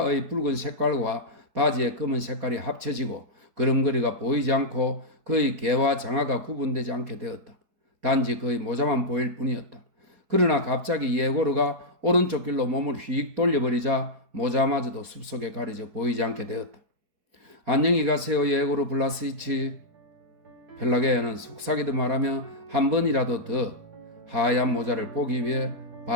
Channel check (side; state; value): left; late; 4.6 ms